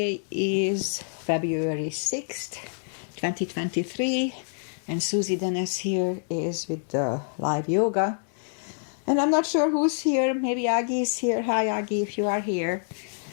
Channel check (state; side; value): silent; right; digital silence